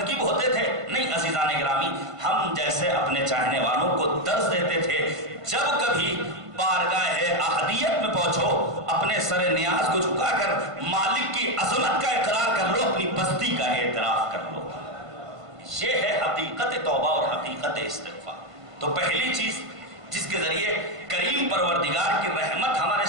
ہوتے تھے؟ نہیں عزیزان گرامی، ہم جیسے اپنے چاہنے والوں کو درس دیتے تھے، جب کبھی بارگاہ احدیت میں پہنچو اپنے سر نیاز کو جھکا کر مالک کی عظمت کا اقرار کر لو، اپنی بستی کا اعتراف کر لو۔ یہ ہے حقیقت توبہ اور حقیقت استغفار۔ تو پہلی چیز جس کے ذریعے کریم پروردگار کی رحمت ہمارے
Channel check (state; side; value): late; left; 1.5 ms